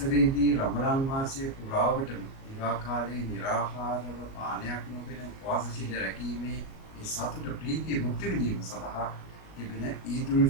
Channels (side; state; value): right; late; 37 ms